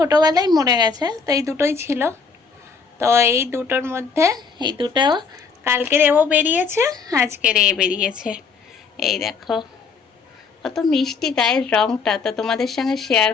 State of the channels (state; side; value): quieter; right; 5.2 dB